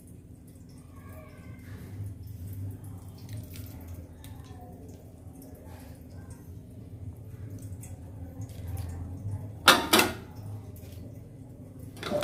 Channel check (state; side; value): identical; both; correlation 1.00